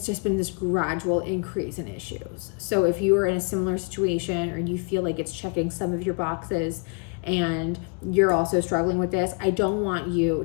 just been this gradual increase in issues. So if you are in a similar situation or you feel like it's checking some of your boxes and you're also struggling with this, I don't want you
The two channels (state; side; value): quieter; right; 36.4 dB